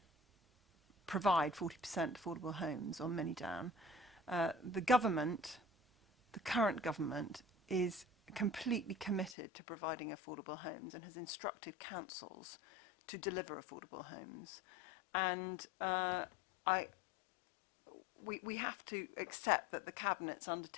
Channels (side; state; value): right; drops out; at 9.3 s